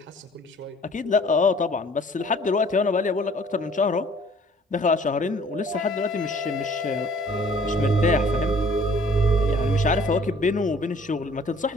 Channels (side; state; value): both; normal; correlation 0.55